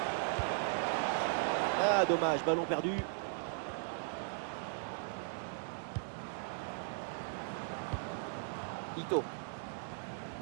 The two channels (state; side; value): silent; left; 53 dB below the other